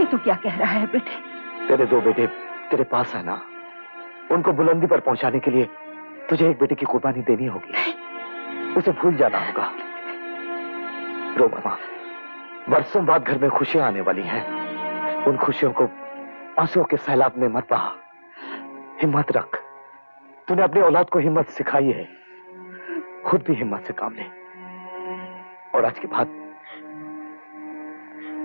तू क्या कह रहा है बेटे? तेरे 2 बेटे तेरे पास है ना, उनको बुलंदी पर पहुंचाने के लिए तुझे एक बेटे की कुर्बानी देनी होगी। उसे भूल जाना होगा। रो मामा, बरसों बाद घर में खुशियां आने वाली हैं। उन खुशियों को आंसुओं के सैलाब में मत बहा। हिम्मत रख। तूने अपनी औलाद को हिम्मत सिखाई है, खुद भी हिम्मत से काम ले। और आज के बाद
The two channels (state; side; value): inverted; both; correlation -1.00